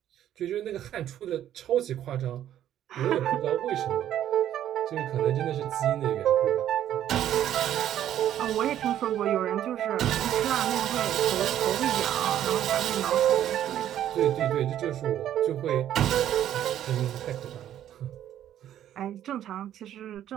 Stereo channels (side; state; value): left; quieter; 11.3 dB